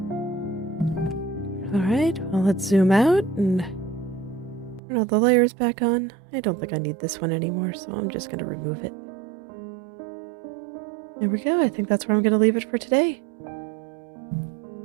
Alright, well let's zoom out and turn all the layers back on. I don't think I need this one anymore, so I'm just going to remove it. There we go. I think that's where I'm going to leave it for today.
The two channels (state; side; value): drops out; left; at 4.8 s